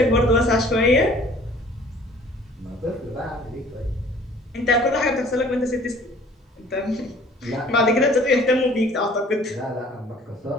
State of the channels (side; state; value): both; normal; correlation 0.52